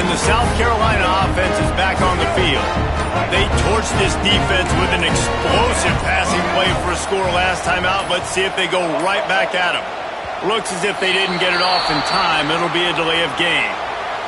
the South Carolina offense is back on the field. They torched this defense with an explosive passing play for a score last time out. Let's see if they go right back at them. Looks as if they didn't get it off in time. It'll be a delay of game.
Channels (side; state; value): both; identical; correlation 1.00